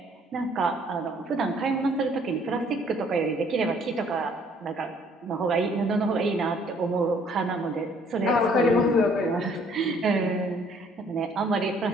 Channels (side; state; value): both; normal; correlation 0.61